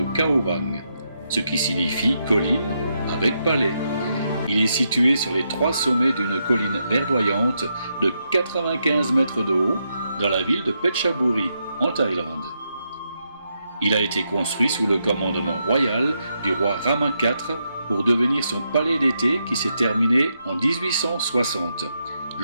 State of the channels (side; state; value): both; inverted; correlation -0.82